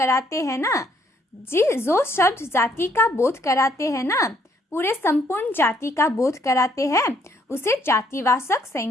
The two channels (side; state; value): both; normal; correlation 0.68